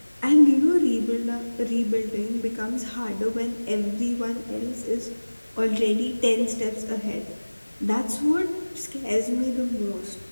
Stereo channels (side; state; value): both; inverted; correlation -1.00